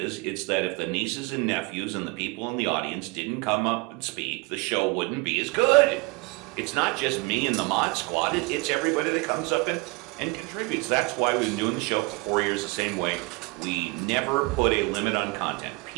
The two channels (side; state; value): left; quieter; 26.7 dB